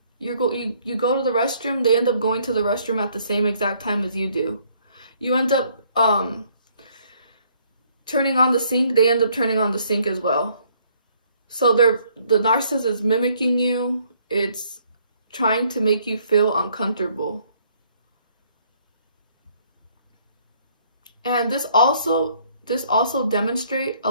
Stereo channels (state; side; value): inverted; both; correlation -0.65